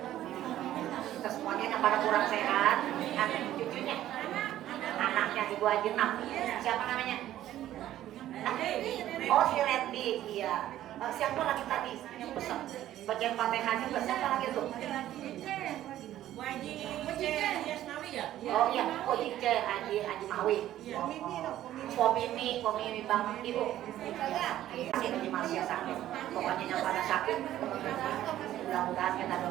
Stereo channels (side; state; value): left; quieter; 13.0 dB